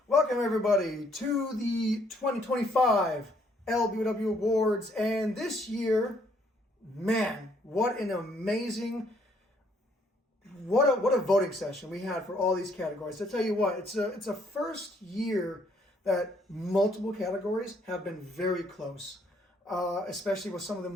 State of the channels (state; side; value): normal; both; correlation 0.67